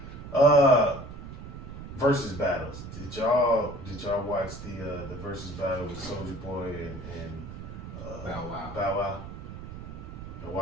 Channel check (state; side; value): noise; right; rumble, 11 dB below the sound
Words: Versus battles. Did y'all watch the versus battle with Soulja Boy and Bow Wow. Bow Wow? Y'all